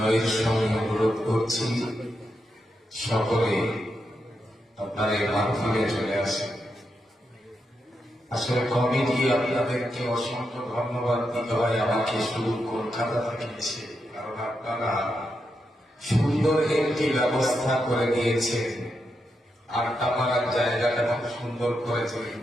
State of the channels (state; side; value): normal; both; correlation 0.85